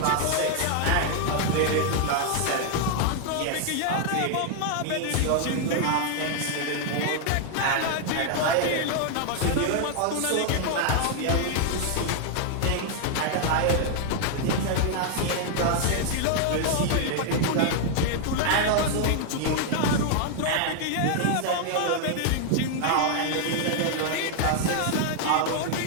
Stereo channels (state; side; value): different; both; correlation 0.00